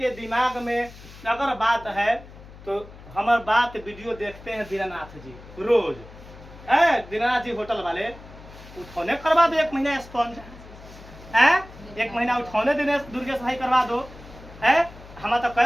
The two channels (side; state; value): left; noise; hum, 18 dB below the sound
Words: दिमाग में अगर बात है तो हमारे बात वीडियो देखते हैं दीनानाथ जी रोज। दीनानाथ जी होटल वाले उठौने करवा दो 1 महीना स्पॉन्ज। 1 महीना उठौने देने दुर्गेश भाई करवा दो। हम तो